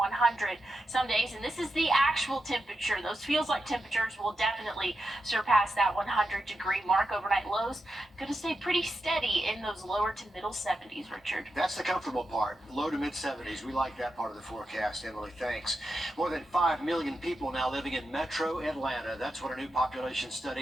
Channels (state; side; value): normal; both; correlation 0.88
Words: some days. And this is the actual temperature. Those feels like temperatures will definitely surpass that 100-degree mark. Overnight lows going to stay pretty steady in those lower to middle 70s, Richard. That's the comfortable part, low to mid 70s. We like that part of the forecast, Emily. Thanks. More than 5 million people now living in metro Atlanta. That's what a new population